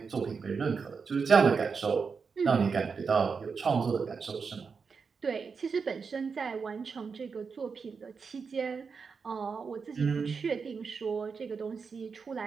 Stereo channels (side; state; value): left; quieter; 5.4 dB